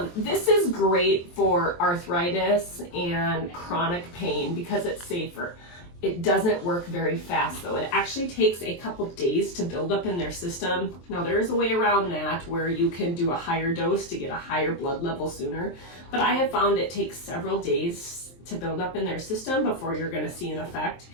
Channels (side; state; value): right; late; 23 ms